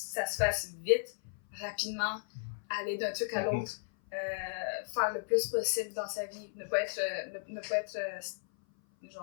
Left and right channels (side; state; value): right; silent; 55 dB below the other